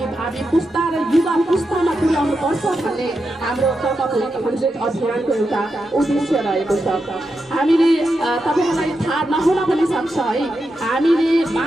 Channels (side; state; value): both; normal; correlation 0.87